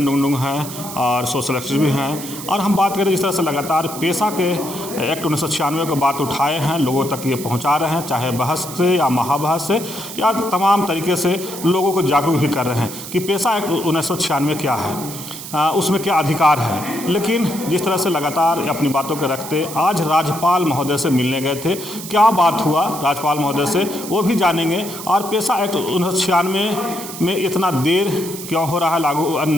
डुंगडुंग हैं और सोशल एक्टिविस्ट भी हैं, और हम बात करें जिस तरह से लगातार पेशा के एक्ट 1996 की बात उठाए हैं, लोगों तक ये पहुंचा रहे हैं, चाहे बहस से या महाबहस से या तमाम तरीके से लोगों को जागरूक भी कर रहे हैं कि पेशा एक्ट 1996 क्या है, उसमें क्या अधिकार है। लेकिन जिस तरह से लगातार अपनी बातों के रखते आज राज्यपाल महोदय से मिलने गए थे, क्या बात हुआ राज्यपाल महोदय से वो भी जानेंगे, और पेशा एक्ट 1996 में इतना देर क्यों हो रहा है लागू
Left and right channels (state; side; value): noise; right; hiss, 11 dB below the sound